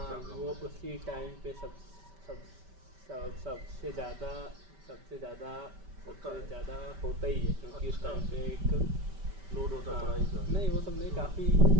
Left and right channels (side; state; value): left; late; 5.1 ms